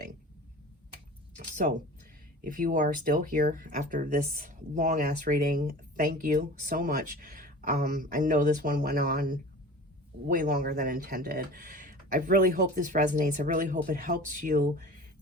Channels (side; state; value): both; normal; correlation 0.39